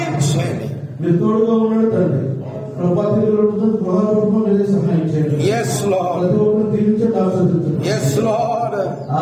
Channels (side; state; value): both; identical; correlation 1.00